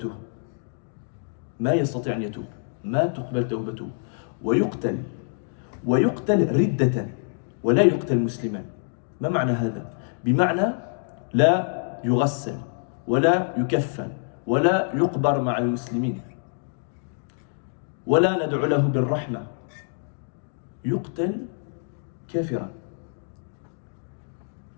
ما يستطيع أن يتوب، ما تقبل توبته، ويقتل ردة ولا يقتل مسلما. ما معنى هذا؟ بمعنى لا يغسل ولا يكفن ولا يقبر مع المسلمين ولا ندعو له بالرحمة، يقتل كافرا.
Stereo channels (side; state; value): right; silent; digital silence